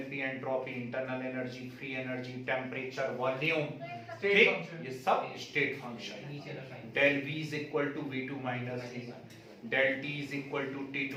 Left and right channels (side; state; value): both; identical; correlation 1.00